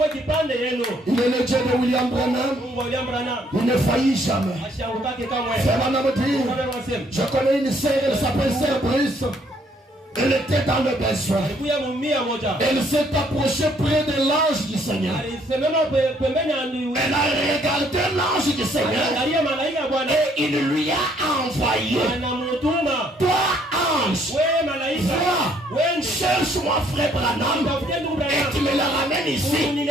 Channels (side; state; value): both; normal; correlation 0.66